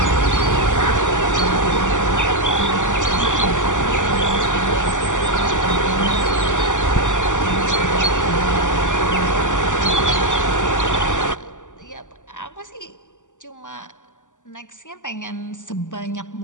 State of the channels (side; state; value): right; late; 0.86 ms